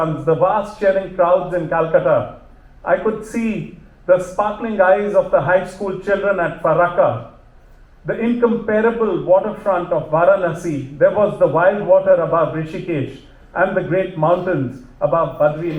the vast cheering crowds in Calcutta. I could see the sparkling eyes of the high school children at Farakka, the incomparable waterfront of Varanasi. There was the wild water above Rishikesh and the great mountains above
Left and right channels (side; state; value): both; identical; correlation 1.00